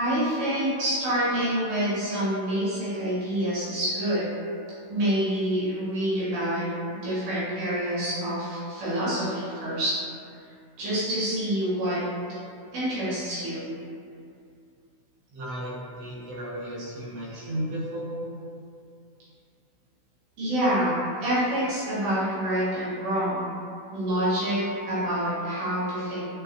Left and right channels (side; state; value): left; late; 16 ms